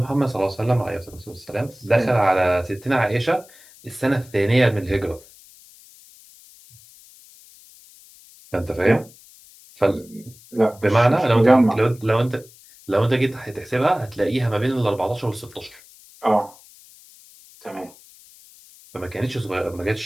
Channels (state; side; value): noise; left; hiss, 24 dB below the sound